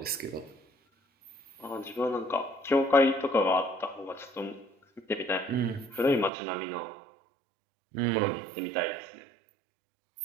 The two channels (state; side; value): drops out; left; at 6.3 s